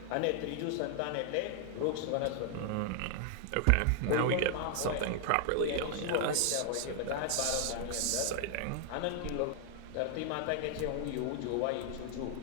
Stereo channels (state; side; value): different; both; correlation 0.00